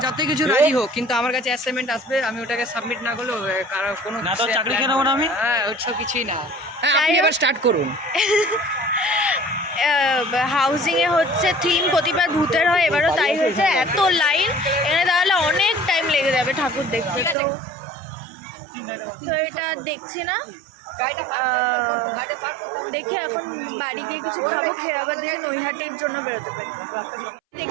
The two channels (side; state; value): left; drops out; at 17.4 s